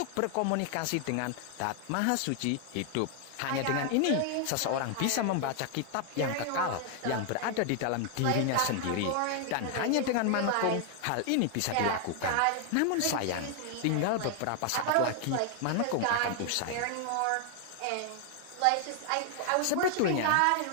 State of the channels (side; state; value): both; different; correlation 0.00